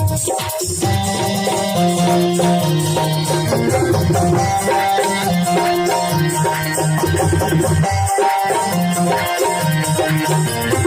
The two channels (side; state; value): both; identical; correlation 1.00